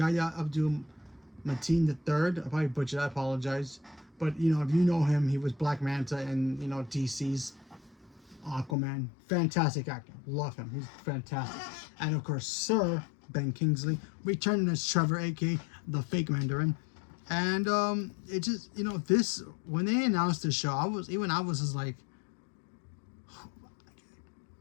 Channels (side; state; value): right; drops out; at 8.8 s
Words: Abdul-Mateen III. I probably butchered that, I apologize. But, if you know him, he was Black Manta in, DC's Aquaman. Fantastic actor. Love him. He's fantastic. And, of course, Sir Ben Kingsley returning as Trevor, aka the fake Mandarin. And it just, this, when they announced the show, I was just like,